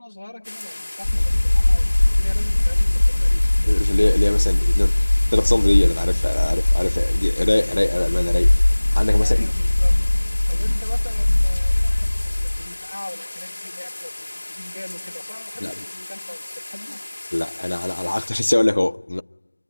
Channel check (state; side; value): inverted; both; correlation -1.00